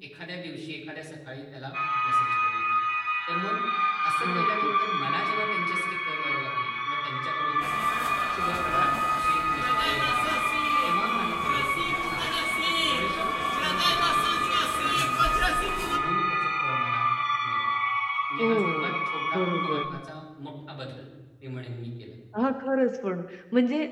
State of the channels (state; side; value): identical; both; correlation 1.00